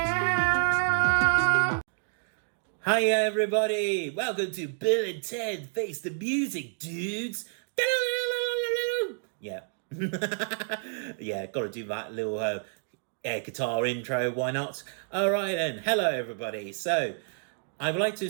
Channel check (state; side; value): silent; left; digital silence